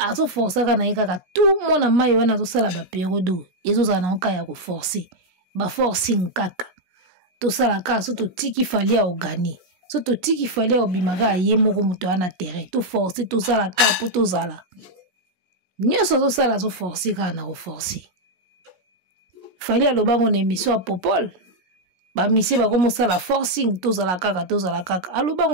forçaka na yeka ka tout mona mayo wana zo sala ba période ezo za na oka ya ko forcer. Ba forcing kaka. To sala ka so to tiki fali a ogani. So to tiki fali a obimaka ye moko muto ana terrain. To forcer to sala ka po to zala. Nyeso zo sala zo forcer ka na ko forcer. Fali a lobango na émission a Popol. Ba misi ba komo sala forcing to zala kaka.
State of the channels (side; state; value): left; late; 17 ms